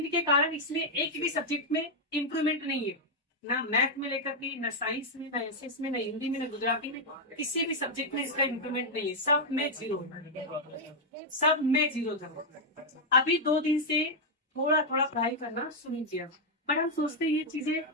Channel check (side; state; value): both; normal; correlation -0.02